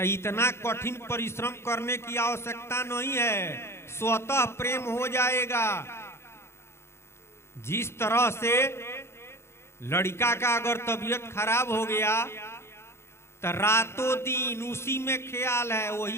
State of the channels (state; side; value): late; right; 0.12 ms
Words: इतना कठिन परिश्रम करने की आवश्यकता नहीं है, स्वतः प्रेम हो जाएगा। जिस तरह से लड़का का अगर तबीयत खराब हो गया तो रातों दिन उसी में ख्याल है,